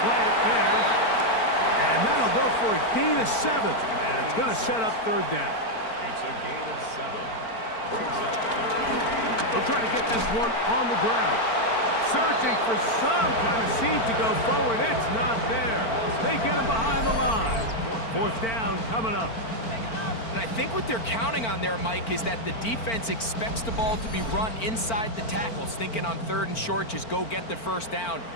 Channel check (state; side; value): late; right; 4.4 ms